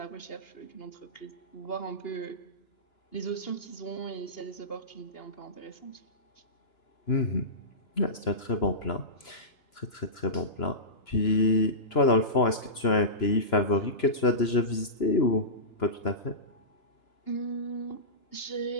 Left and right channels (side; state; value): right; late; 3.0 ms